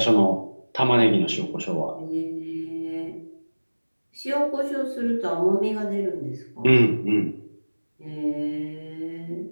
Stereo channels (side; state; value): both; inverted; correlation -1.00